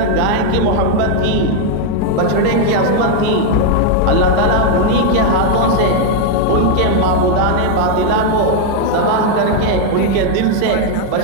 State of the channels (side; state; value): both; different; correlation 0.00